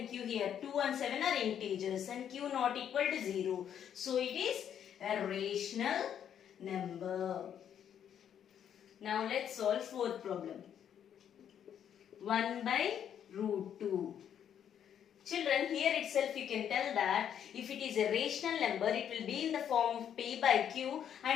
Q here. 2 and 7 are integers and Q not equal to 0. So it is a rational number. Now let's solve fourth problem. 1 by root 2. Children, here itself you can tell that if it is a rational number, it will be in the form of P by Q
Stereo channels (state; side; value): quieter; right; 9.2 dB